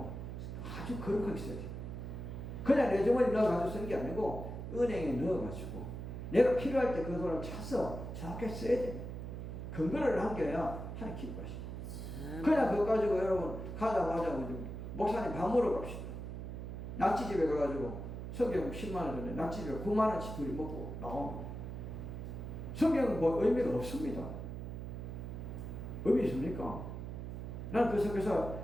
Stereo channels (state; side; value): noise; right; hum, 7 dB below the sound